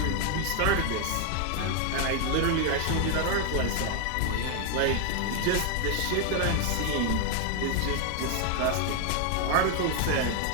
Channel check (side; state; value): both; different; correlation 0.00